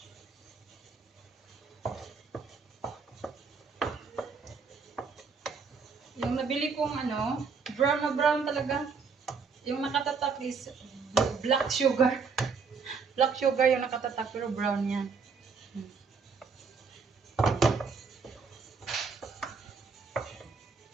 Yung nabili kong ano, brown na brown talaga. Yung nakatatak is black sugar. Black sugar yung nakatatak pero brown yan.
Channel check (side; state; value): left; quieter; 5.2 dB